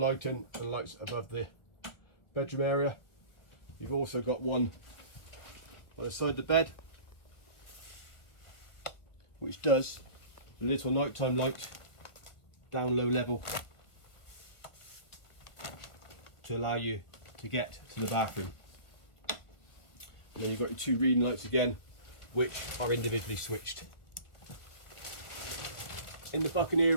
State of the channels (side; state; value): right; late; 1.4 ms